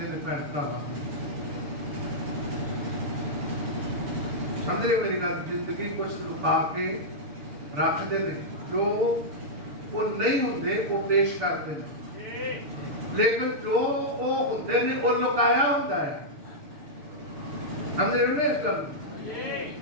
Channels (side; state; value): left; late; 6.8 ms